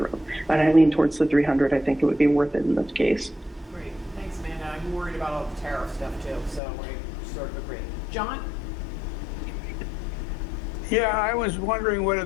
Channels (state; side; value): drops out; right; at 6.6 s